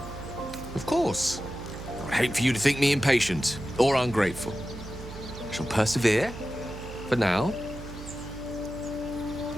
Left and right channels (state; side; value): noise; right; hum, 12 dB below the sound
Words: Of course. I would hate for you to think me impatient or ungrateful. I shall persevere, for now.